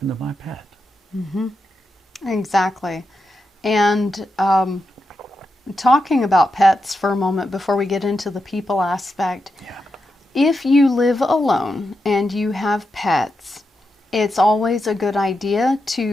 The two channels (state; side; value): normal; both; correlation 0.87